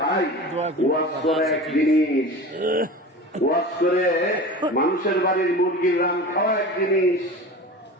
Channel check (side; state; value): both; normal; correlation 0.34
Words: ওয়াজ করে এক জিনিস, ওয়াজ করে মানুষের বাড়ির মুরগির রান খাওয়া এক জিনিস,